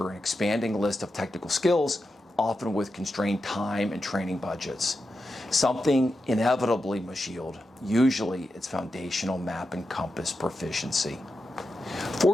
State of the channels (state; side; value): normal; both; correlation 0.89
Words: an expanding list of technical skills, often with constrained time and training budgets. Something inevitably must yield. Usually, it's foundational map and compass proficiency.